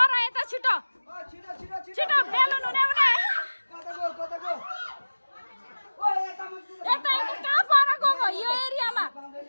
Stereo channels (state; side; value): inverted; both; correlation -1.00